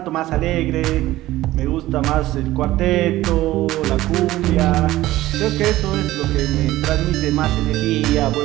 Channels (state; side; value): quieter; left; 16.1 dB